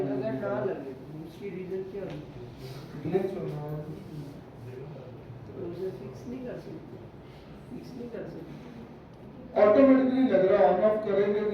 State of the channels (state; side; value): identical; both; correlation 1.00